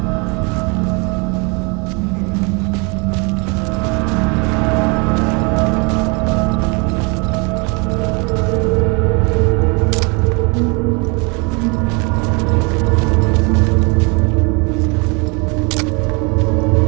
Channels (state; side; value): quieter; left; 31.2 dB